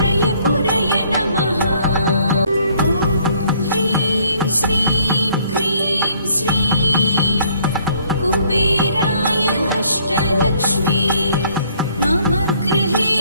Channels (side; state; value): both; inverted; correlation -0.63